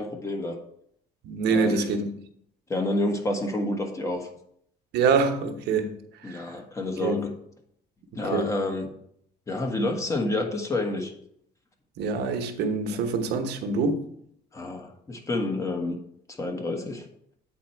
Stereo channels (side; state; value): both; normal; correlation 0.44